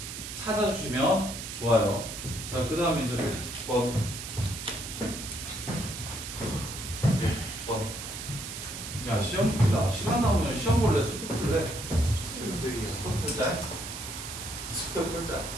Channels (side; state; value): right; noise; hiss, 8 dB below the sound